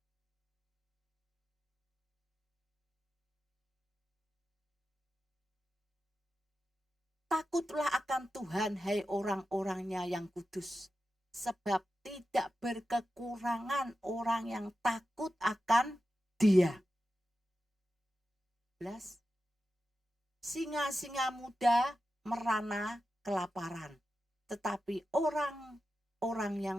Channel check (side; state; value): both; normal; correlation 0.91